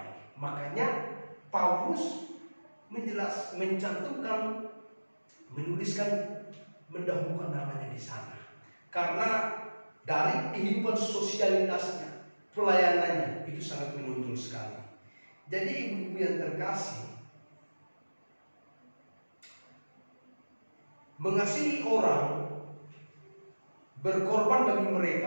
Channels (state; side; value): inverted; both; correlation -1.00